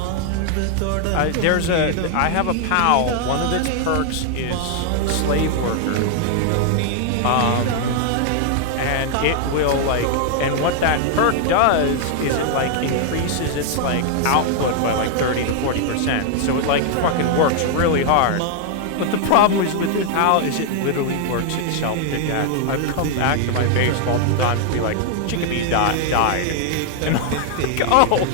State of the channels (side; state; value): both; different; correlation 0.00